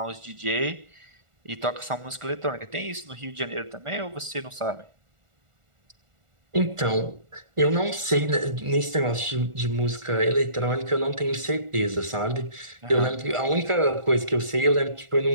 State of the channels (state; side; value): late; left; 1.4 ms